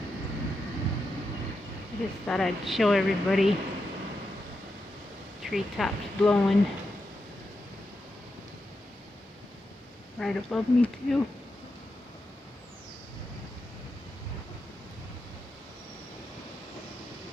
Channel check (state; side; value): normal; both; correlation 0.86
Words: I just thought I'd show everybody treetops blowing right above me too.